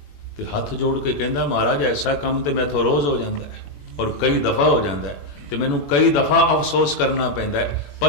ते हथ जोड़ के कहता महाराज ऐसा काम तो मैं तो रोज़ हो जाता है और कई दफ़ा हो जाता है, तो मैनू कई दफ़ा अफसोस करना पैंदा है,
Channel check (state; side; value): late; right; 21 ms